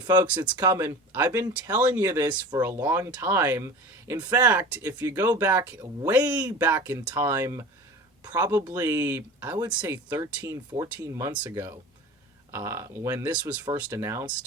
Folks, it's coming. I've been telling you this for a long time. In fact, if you go back, way back in time, probably, I would say 13, 14 months ago, when this was first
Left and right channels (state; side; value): normal; both; correlation 0.35